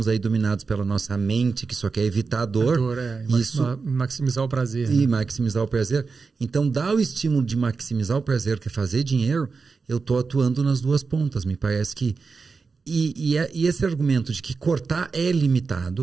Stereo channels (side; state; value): left; quieter; 4.7 dB